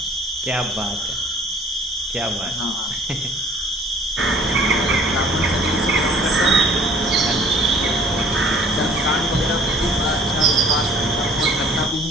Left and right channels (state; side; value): normal; both; correlation 0.56